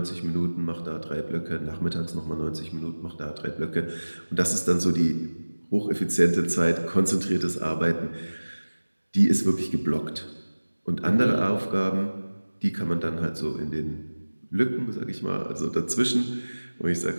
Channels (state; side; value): inverted; both; correlation -1.00